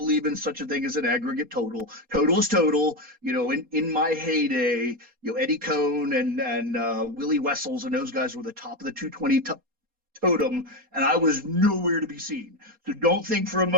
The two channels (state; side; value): late; left; 4.2 ms